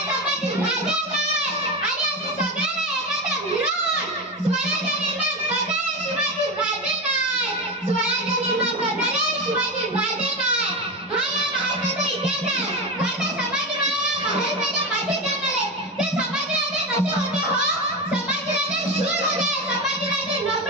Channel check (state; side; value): normal; both; correlation 0.19